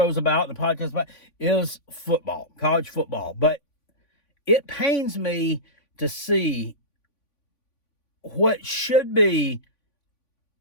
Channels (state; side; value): late; right; 3.5 ms